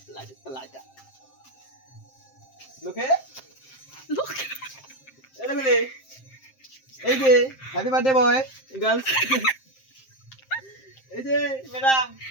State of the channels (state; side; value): late; right; 7.6 ms